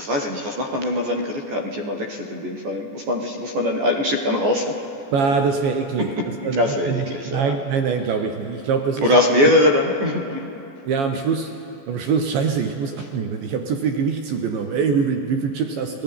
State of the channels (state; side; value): late; left; 15 ms